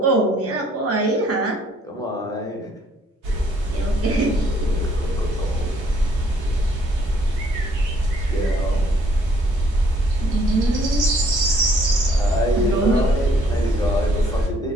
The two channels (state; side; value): normal; both; correlation 0.64